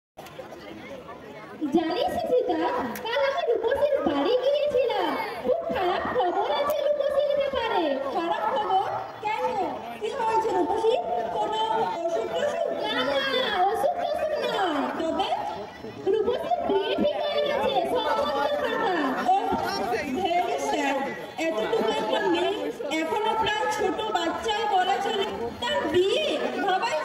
জানিস সীতা, কাল আমি রূপসীর বাড়ি গিয়েছিলাম। খুব খারাপ খবর আছে রূপসীর ব্যাপারে। খারাপ খবর? কেন, কি হয়েছে রূপসী? কোনো অসুখ টসুখ? না না, অসুখ টসুখ নয়। তবে রূপসীর বিয়ে ঠিক হয়ে গেছে, সম্বন্ধ খাতা। Very sad. এতটুকু একটা মেয়ে, এখনো প্রায় ছোট বাচ্চায় বলা চলে, তার বিয়ে ভাবাই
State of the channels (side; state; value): both; identical; correlation 1.00